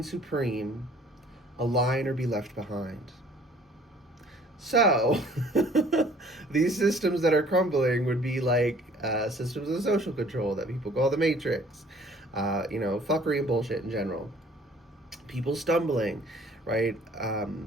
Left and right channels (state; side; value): normal; both; correlation 0.55